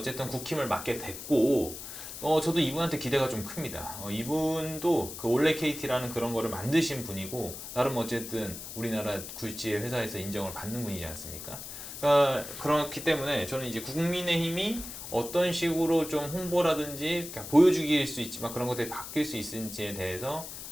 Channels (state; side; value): noise; left; hiss, 10 dB below the sound